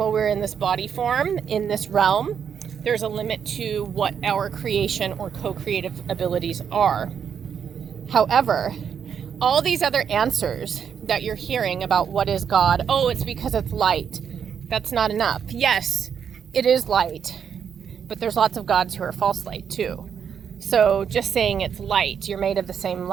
we're in this body form, in this realm, there's a limit to what our creation or co-creative abilities are. However, all these other answers that you're hearing about what is God. Oh, it's because it's light. That's not enough. Yes, it is light, but there's lots of gods who are false light too. So just saying it's light, you're made of the same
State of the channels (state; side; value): quieter; left; 7.6 dB